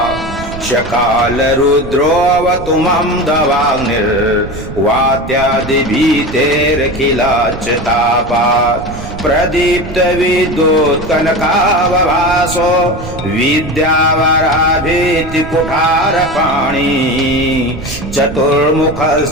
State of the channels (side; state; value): right; noise; rumble, 11 dB below the sound